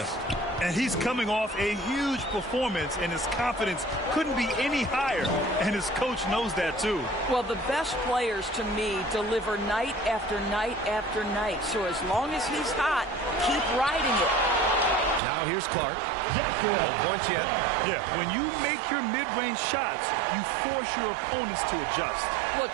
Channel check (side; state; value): left; drops out; at 15.2 s